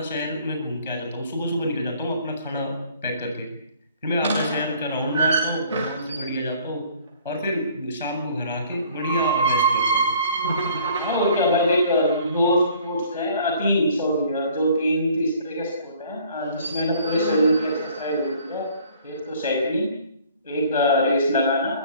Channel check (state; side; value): inverted; both; correlation -0.56